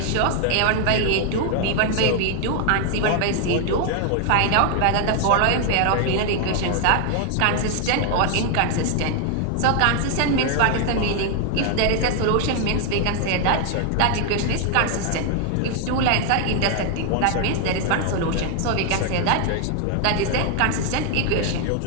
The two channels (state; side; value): different; both; correlation 0.00